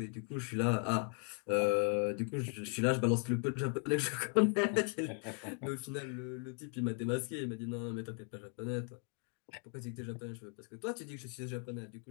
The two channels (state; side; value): quieter; right; 39.1 dB